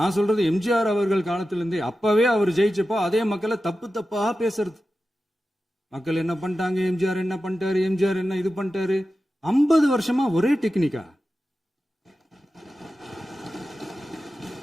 சொல்றது எம்ஜிஆர் அவர்கள் காலத்திலிருந்தே. அப்பவே அவர் ஜெயிச்சப்போ அதே மக்களை தப்பு தப்பா பேசுறது. மக்கள் என்ன பண்ணிட்டாங்க, எம்ஜிஆர் என்ன பண்ணிட்டாரு, எம்ஜிஆர் என்ன இது பண்ணிட்டாரு. 50 வருஷமா ஒரே டெக்னிக்கா.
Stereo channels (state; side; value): normal; both; correlation 0.93